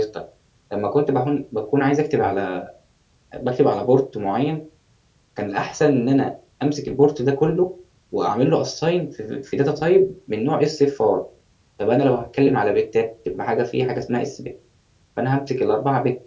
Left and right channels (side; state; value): both; identical; correlation 1.00